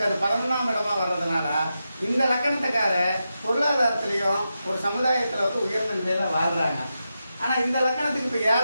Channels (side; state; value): both; inverted; correlation -0.89